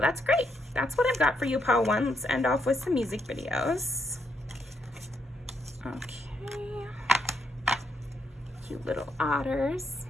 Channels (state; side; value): normal; both; correlation 0.77